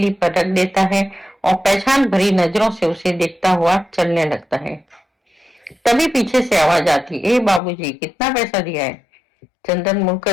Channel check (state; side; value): drops out; right; at 7.6 s